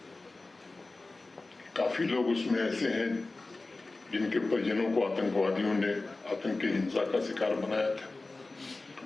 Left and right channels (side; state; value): right; quieter; 3.3 dB